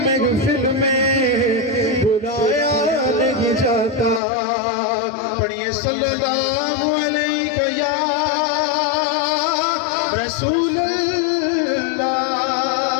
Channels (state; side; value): drops out; right; at 4.2 s